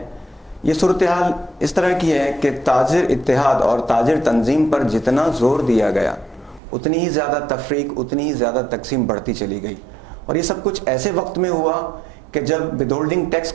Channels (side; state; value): left; drops out; at 6.6 s